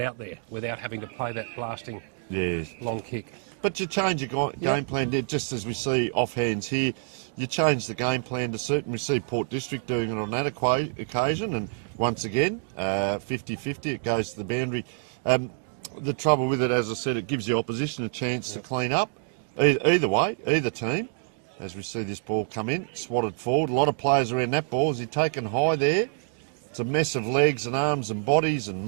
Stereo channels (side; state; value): left; silent; digital silence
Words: there without having to play that blasting long kick. But you change your game plan, just as we see offhands here. You change the game plan to suit, and we see Port District doing it on that occasion, and once again, 50-50, it goes to the boundary. The trouble with it, as I said, it gives the opposition a chance to clean up. Either way, either team. As we see this ball come in, swatted forward. A lot of players around that ball. Is he taken high there? It's a mess of legs and arms and bodies and